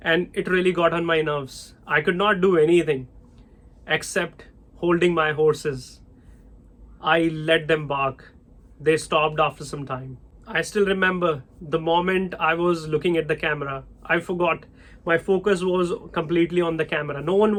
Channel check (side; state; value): both; identical; correlation 1.00